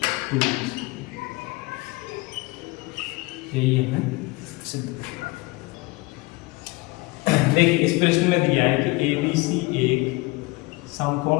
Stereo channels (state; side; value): quieter; right; 24.0 dB